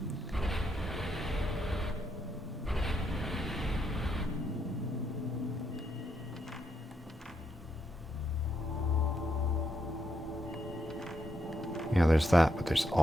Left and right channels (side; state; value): both; normal; correlation 0.79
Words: Yeah, there's that, but there's